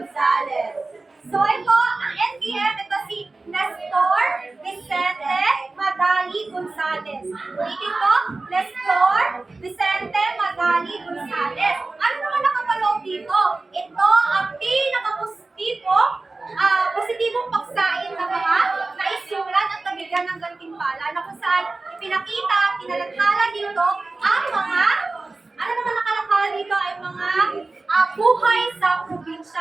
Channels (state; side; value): quieter; left; 3.4 dB